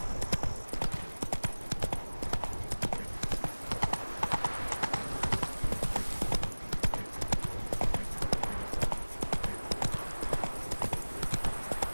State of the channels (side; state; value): both; inverted; correlation -1.00